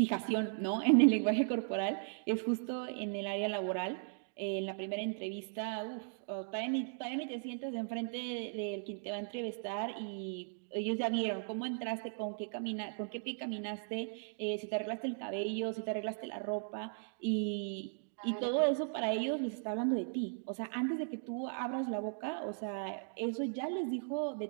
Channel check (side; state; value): left; silent; digital silence